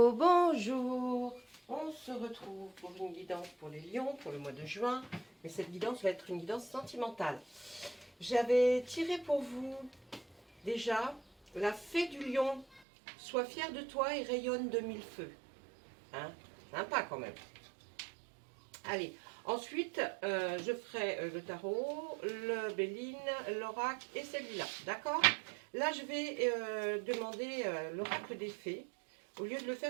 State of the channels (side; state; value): left; drops out; at 12.8 s